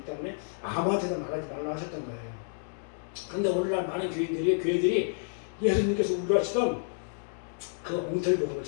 때문에 아무한테나 말하지 말라 하셨던 거예요. 그런데 오늘날 많은 교회들이 예수님께서 우려하시던 그 엉터리 복음을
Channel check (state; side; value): silent; right; digital silence